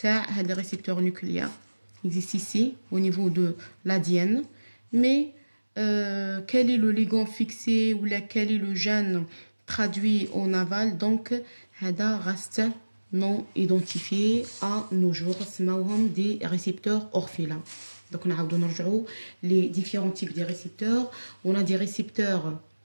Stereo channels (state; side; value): inverted; both; correlation -1.00